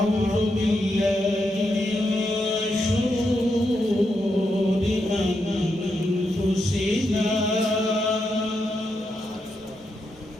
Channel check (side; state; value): both; normal; correlation 0.83